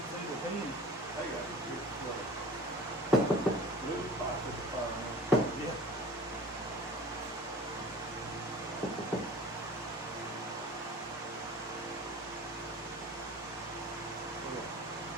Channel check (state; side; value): normal; both; correlation 0.42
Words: see the pin. They got it here. Really plastic fire. Yeah.